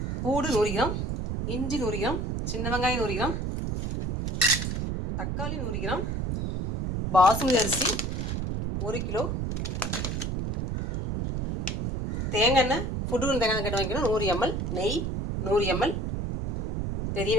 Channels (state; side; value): noise; right; rumble, 2 dB below the sound